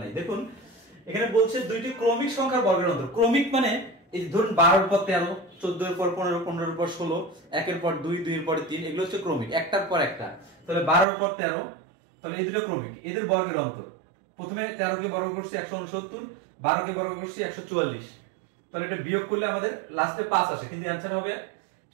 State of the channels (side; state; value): left; drops out; at 11.1 s